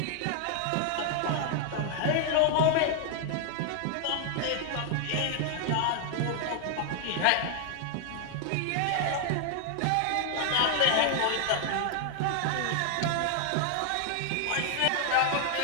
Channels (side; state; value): both; different; correlation 0.00